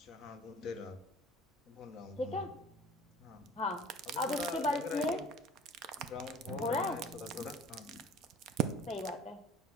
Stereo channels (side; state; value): both; normal; correlation 0.46